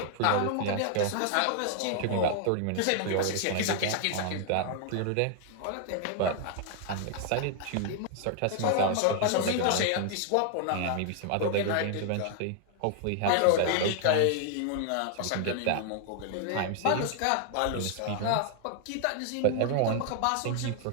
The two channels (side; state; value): both; different; correlation 0.00